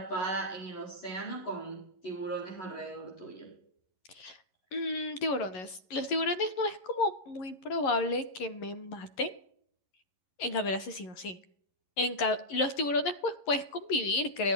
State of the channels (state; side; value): late; right; 11 ms